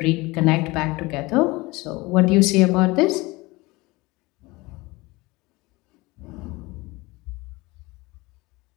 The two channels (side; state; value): right; quieter; 22.6 dB